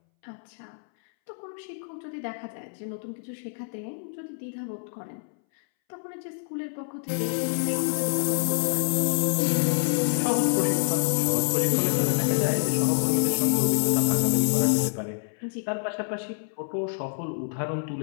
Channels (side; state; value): right; silent; 60 dB below the other